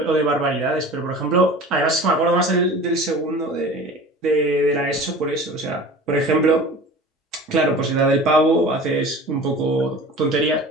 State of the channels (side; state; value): both; normal; correlation 0.39